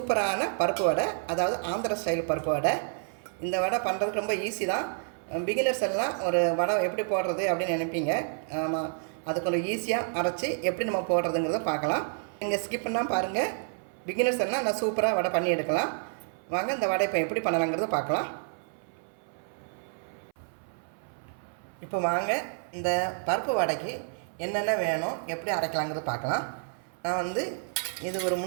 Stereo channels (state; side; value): silent; left; 58 dB below the other